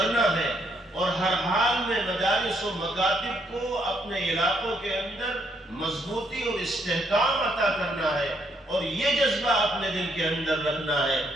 ہے اور ہر حال میں مدارس و مکاتب کو اپنے علاقوں کے اندر مضبوطی اور استحکام عطا کرنا ہے اور یہ جذبہ اپنے دل کے اندر رکھنا ہے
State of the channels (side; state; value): both; normal; correlation 0.73